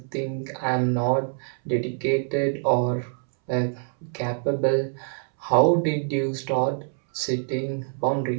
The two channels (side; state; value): left; silent; 62 dB below the other